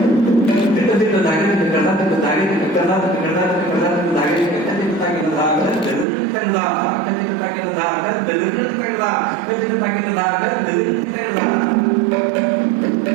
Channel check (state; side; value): drops out; left; at 6.1 s